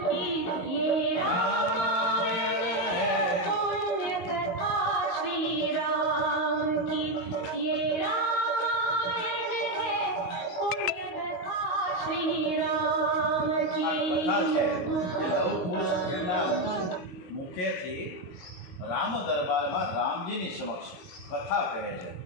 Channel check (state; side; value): late; right; 22 ms